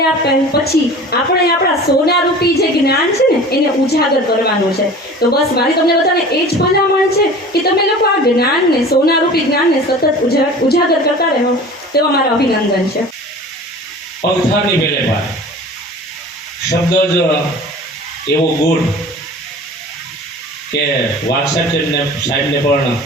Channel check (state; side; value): normal; both; correlation 0.41